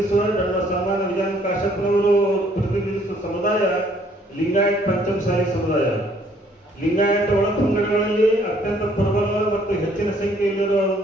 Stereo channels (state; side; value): normal; both; correlation 0.63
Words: ನನ್ನ ಸನ್ಮಾನ ವಿಧಾನ ಕಾಶ್ಯಪ್ನವರು ಪ್ರತಿನಿಧಿಸುವ ಸಮುದಾಯ ಲಿಂಗಾಯತ್ ಪಂಚಮಸಾಲಿ ಸಮುದಾಯ. ಲಿಂಗಾಯತ ಒಳಪಂಗಡಗಳಲ್ಲಿ ಅತ್ಯಂತ ಪ್ರಬಲ ಮತ್ತು ಹೆಚ್ಚಿನ ಸಂಖ್ಯೆಯಲ್ಲಿರುವ